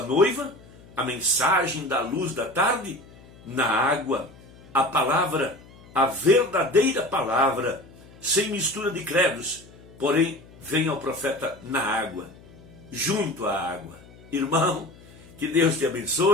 noiva, a mensagem da luz da tarde, na água. A palavra, a verdadeira palavra, sem mistura de credos, porém vem ao profeta na água, junto à água. Irmão, que Deus te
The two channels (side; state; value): left; noise; hum, 22 dB below the sound